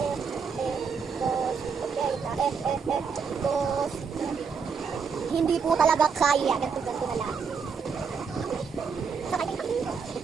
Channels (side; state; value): left; quieter; 5.8 dB